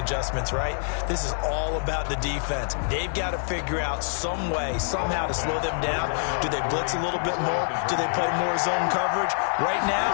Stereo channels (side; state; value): right; silent; digital silence